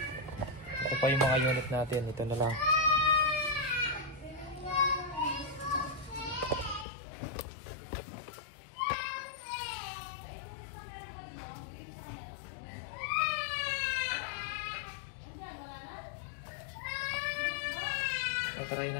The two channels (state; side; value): drops out; right; at 6.9 s